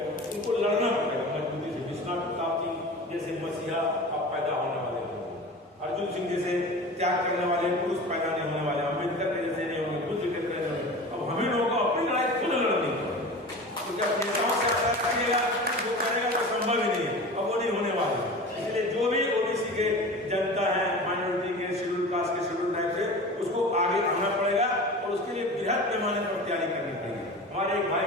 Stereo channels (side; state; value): both; normal; correlation 0.34